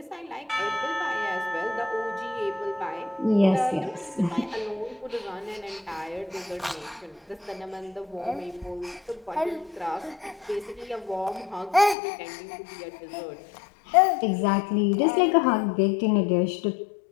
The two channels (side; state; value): right; drops out; at 12.0 s